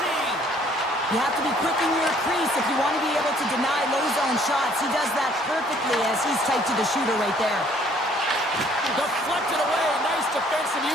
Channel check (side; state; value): both; normal; correlation 0.60